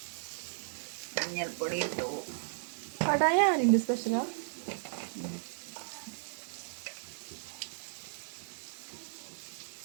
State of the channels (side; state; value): left; silent; digital silence